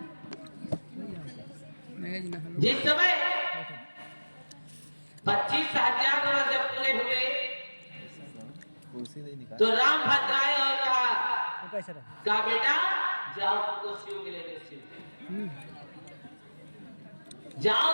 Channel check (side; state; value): both; inverted; correlation -1.00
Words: जिस समय 25,000 वर्ष जब पूरे हुए, तो राम भद्र आए और कहा बेटा जाओ, तुमको शिव मिलेंगे, शिव जाओ,